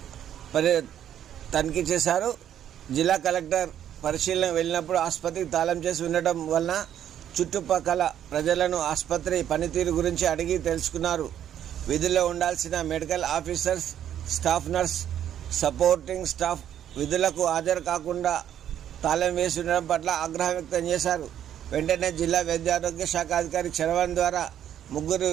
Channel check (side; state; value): left; quieter; 10.4 dB